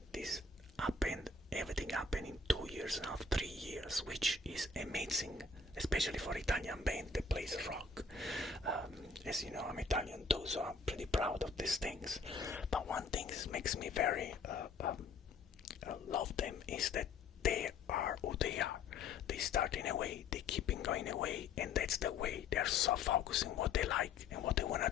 this happened. Everything happened in 2 years and a half, 3 years, which is amazing, especially for Italian band that plays rock. As you know, I'm Italian too, so I'm pretty proud of these things. But one thing that makes me very love them is that they are who they are. They start in a way, they keep going away, and that's the way. They're so focused on what they like and what they want to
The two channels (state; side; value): quieter; right; 4.5 dB